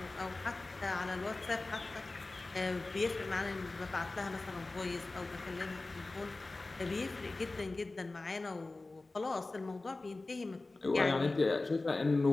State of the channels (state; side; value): quieter; right; 3.2 dB